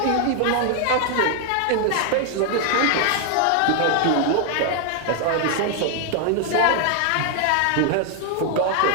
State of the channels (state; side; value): different; both; correlation 0.00